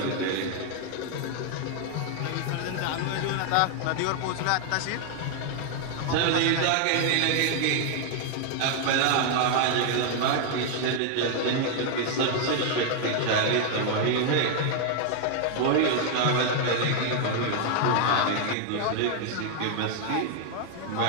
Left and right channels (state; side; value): different; both; correlation 0.00